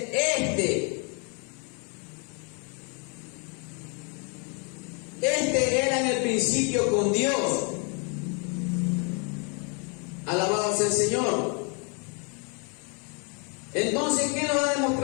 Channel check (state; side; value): quieter; right; 35.3 dB